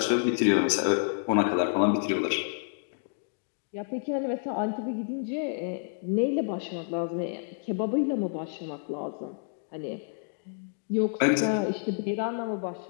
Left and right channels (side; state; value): right; silent; digital silence